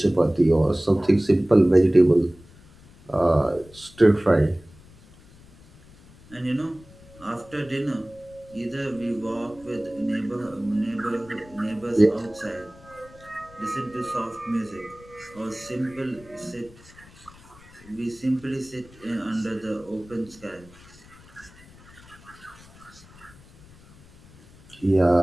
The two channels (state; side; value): noise; left; rumble, 24 dB below the sound